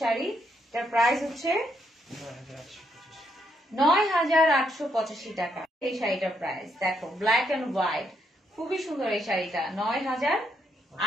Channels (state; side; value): normal; both; correlation 0.76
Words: এটার প্রাইস হচ্ছে 9,885 টাকা। এই শাড়িটার প্রাইস দেখো, ব্ল্যাক এন্ড হোয়াইট, খুবই সুন্দর এই শাড়িটা।